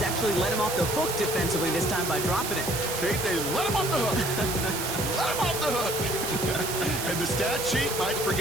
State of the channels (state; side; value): noise; right; hiss, 4 dB below the sound